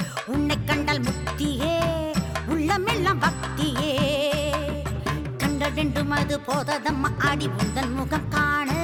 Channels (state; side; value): identical; both; correlation 1.00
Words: உன்னை கண்டால் முக்தியே, உள்ளமெல்லாம் பக்தியே. கண்ட வேண்டும் அது போததம்மா ஆடி உந்தன் முகம் காண,